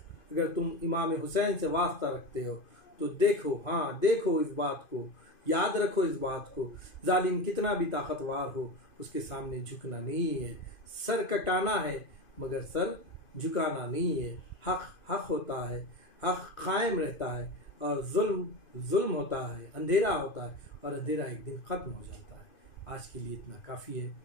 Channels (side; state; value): right; late; 2.5 ms